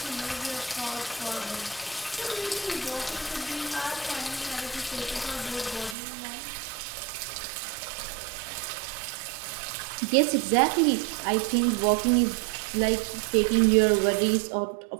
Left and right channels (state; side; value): drops out; left; at 6.0 s